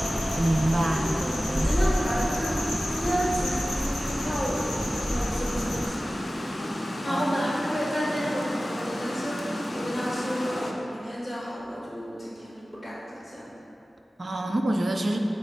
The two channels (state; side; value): normal; both; correlation 0.96